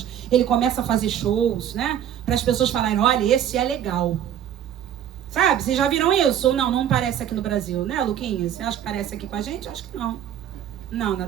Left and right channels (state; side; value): quieter; left; 10.1 dB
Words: ele começa a fazer shows, né? Para as pessoas falarem, olha, esse é legal. Sabe, vocês já viram isso? Ou não parece aqui no Brasil, né, Luquinha? Você acha que parece aqui com a gente? Acho que não. Não,